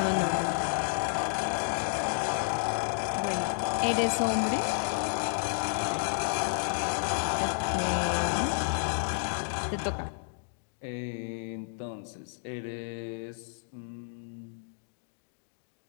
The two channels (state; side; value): silent; right; digital silence